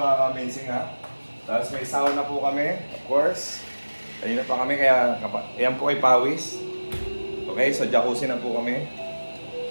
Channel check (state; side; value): inverted; both; correlation -1.00